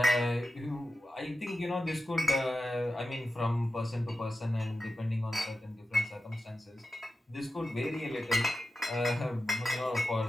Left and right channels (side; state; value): both; normal; correlation 0.92